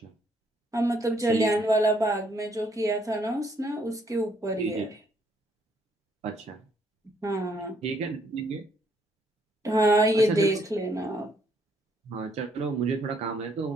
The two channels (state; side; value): normal; both; correlation 0.69